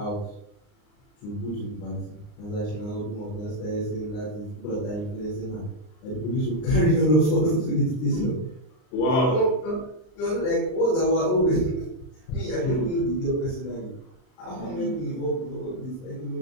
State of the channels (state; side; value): late; right; 39 ms